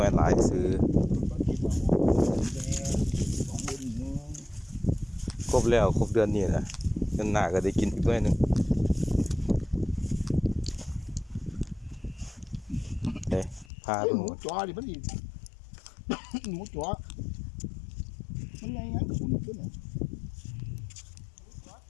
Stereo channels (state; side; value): drops out; right; at 13.7 s